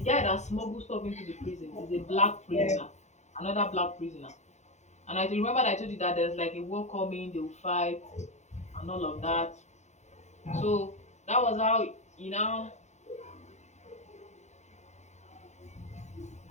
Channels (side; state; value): right; late; 0.34 ms